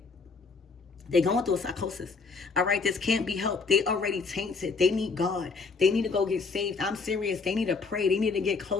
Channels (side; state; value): right; quieter; 4.6 dB